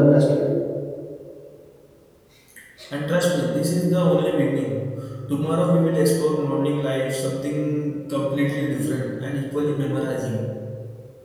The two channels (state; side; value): identical; both; correlation 1.00